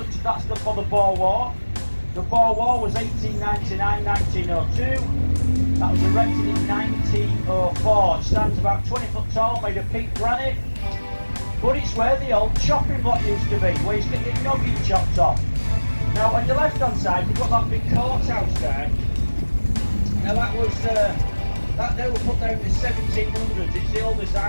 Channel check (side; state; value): both; inverted; correlation -1.00